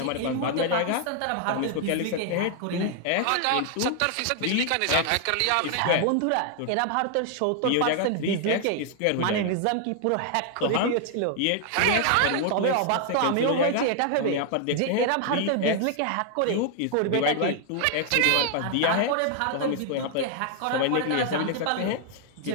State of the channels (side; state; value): both; different; correlation 0.00